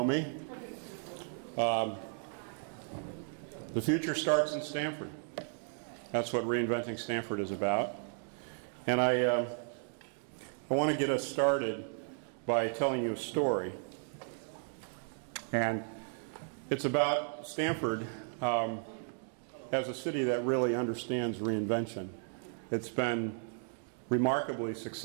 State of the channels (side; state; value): left; silent; 55 dB below the other